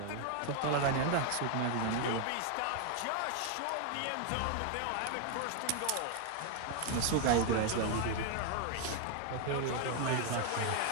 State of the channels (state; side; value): different; both; correlation 0.00